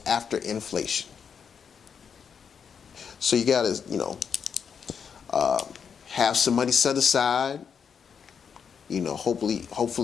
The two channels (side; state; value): right; quieter; 6.9 dB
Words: after inflation. So you got to, have some money set aside.